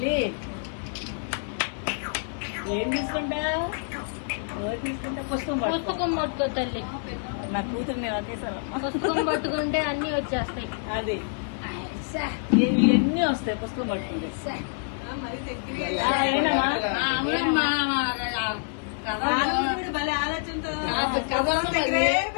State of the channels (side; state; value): right; silent; 60 dB below the other